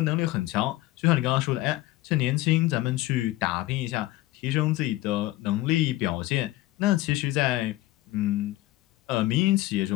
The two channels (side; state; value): right; quieter; 17.2 dB